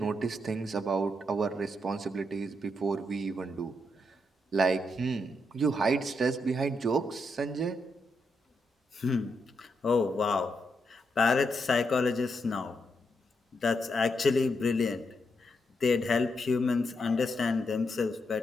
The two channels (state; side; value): normal; both; correlation 0.81